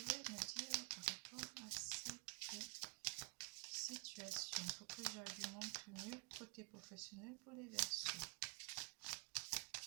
me dire par rapport à cette côté professionnel pour les Verseaux.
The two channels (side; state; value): left; quieter; 32.8 dB